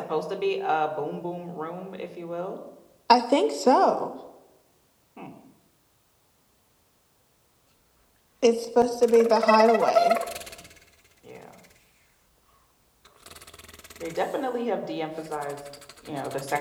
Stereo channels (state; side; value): identical; both; correlation 1.00